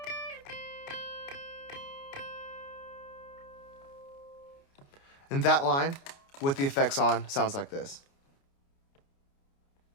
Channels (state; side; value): late; right; 29 ms